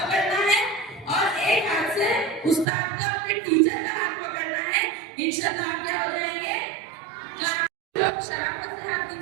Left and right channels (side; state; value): left; drops out; at 2.7 s